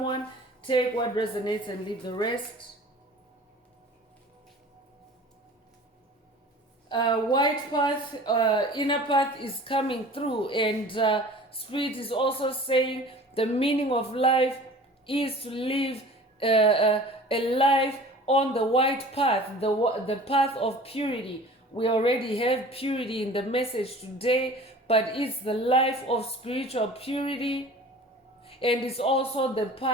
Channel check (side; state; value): both; normal; correlation 0.43